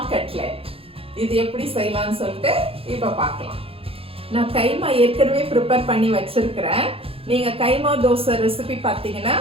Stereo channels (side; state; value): left; late; 0.27 ms